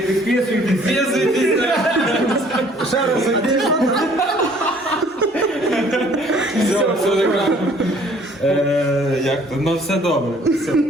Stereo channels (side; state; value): both; normal; correlation 0.57